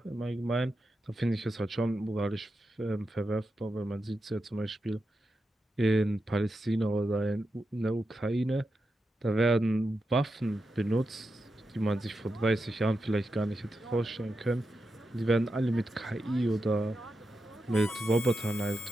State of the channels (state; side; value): normal; both; correlation 0.88